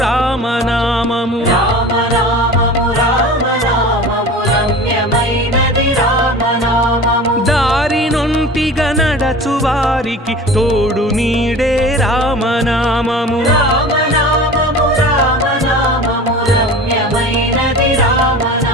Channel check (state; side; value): normal; both; correlation 0.37